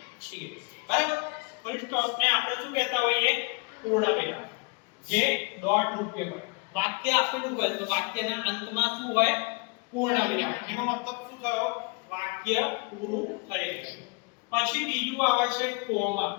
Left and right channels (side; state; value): right; quieter; 31.5 dB